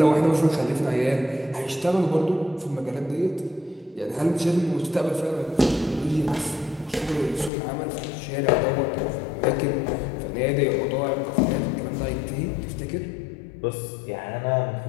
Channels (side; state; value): right; drops out; at 7.5 s